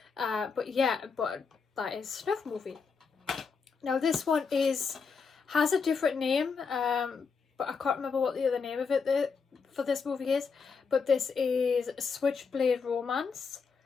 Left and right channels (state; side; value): quieter; right; 5.4 dB